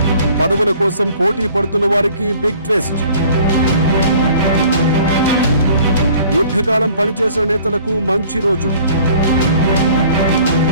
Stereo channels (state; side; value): inverted; both; correlation -0.52